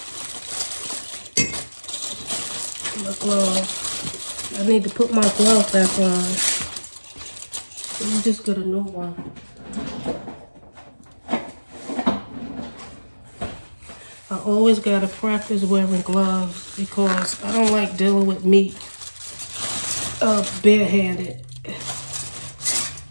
My glove. I need to put my glove back on. Let me just get a new one. I always gotta practice wearing gloves because I don't like dealing with meat barehanded.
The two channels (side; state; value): both; inverted; correlation -1.00